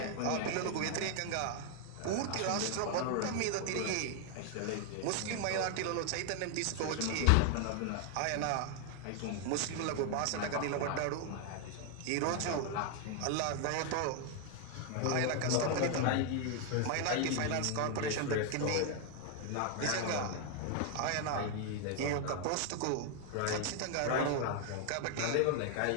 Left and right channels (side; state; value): both; different; correlation 0.00